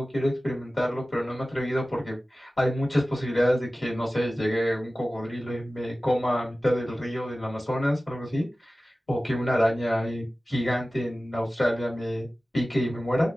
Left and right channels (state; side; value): normal; both; correlation 0.96